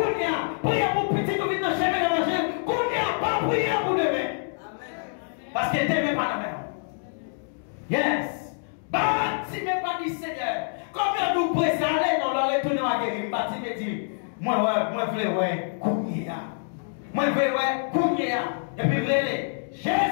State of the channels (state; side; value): silent; right; digital silence